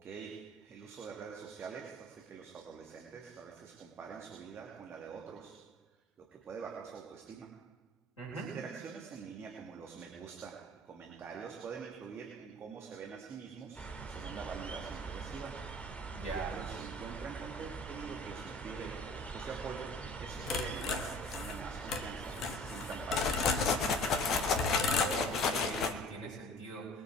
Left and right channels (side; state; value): both; normal; correlation 0.47